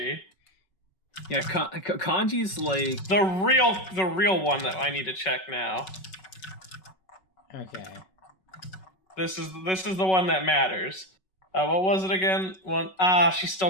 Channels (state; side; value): late; right; 5.3 ms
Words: Yeah, Kanji's like the real one that I need to check now. Okay. This is the one that matters. What was it again? She's